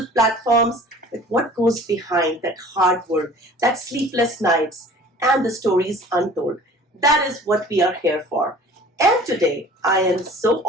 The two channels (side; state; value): both; normal; correlation 0.46